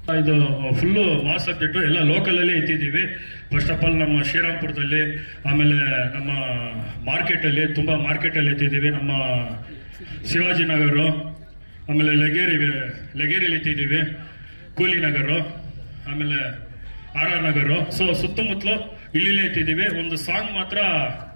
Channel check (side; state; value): both; inverted; correlation -1.00